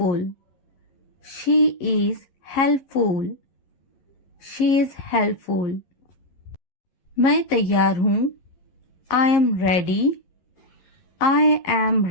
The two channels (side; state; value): right; late; 11 ms